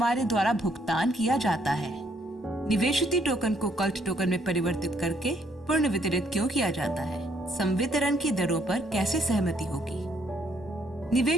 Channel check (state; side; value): normal; both; correlation 0.69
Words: द्वारा भुगतान किया जाता है। निवेशित टोकन को कल्ट टोकन में परिवर्तित करके पूर्ण वितरित क्यों किया जाता है? संवितरण की दरों पर कैसे सहमति होगी?